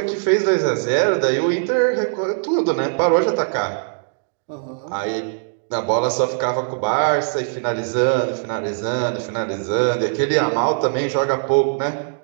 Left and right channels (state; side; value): silent; left; digital silence